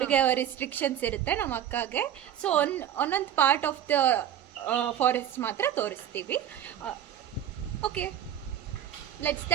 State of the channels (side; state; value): left; quieter; 10.4 dB